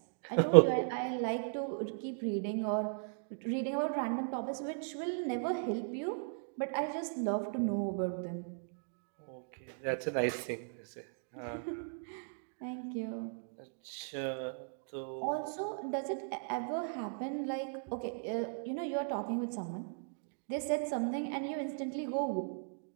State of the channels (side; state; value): left; silent; digital silence